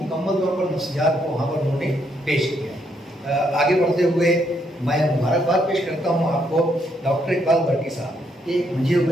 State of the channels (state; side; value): normal; both; correlation 0.74